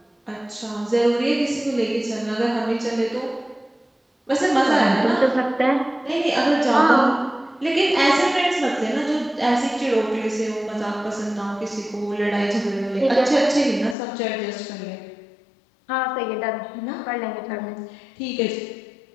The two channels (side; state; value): right; drops out; at 14.0 s